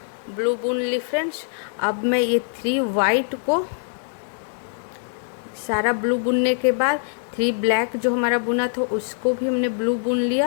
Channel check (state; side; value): silent; right; digital silence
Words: ब्लू बुन ली फ्रेंड्स। अब मैं ये 3 वाइट को सारा ब्लू बुनने के बाद 3 ब्लैक जो हमारा बुना था उसको भी हमने ब्लू बुन